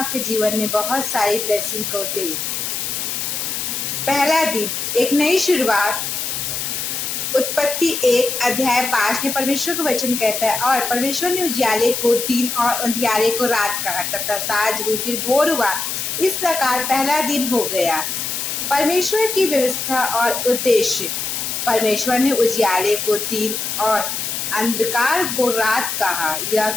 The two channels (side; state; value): left; noise; hiss, 3 dB below the sound